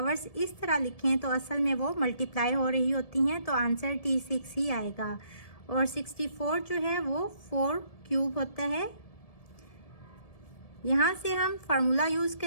इस तरह लिखें तो असल में वो मल्टीप्लाई हो रही होती हैं, तो आंसर T6 ही आएगा। और 64 जो है वो 4 क्यूब होता है। यहाँ से हम फार्मूला यूज़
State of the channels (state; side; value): late; right; 1.7 ms